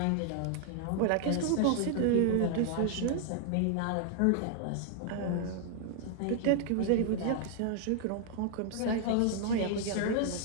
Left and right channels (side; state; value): both; different; correlation 0.00